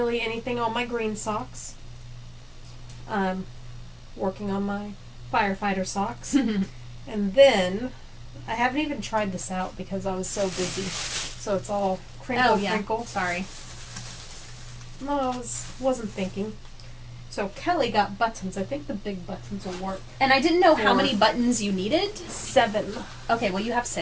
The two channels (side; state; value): both; identical; correlation 1.00